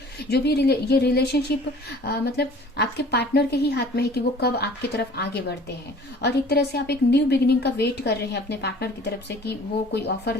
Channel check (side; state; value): both; normal; correlation 0.48